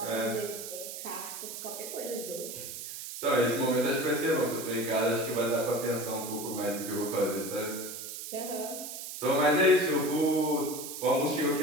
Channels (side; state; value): right; noise; hiss, 9 dB below the sound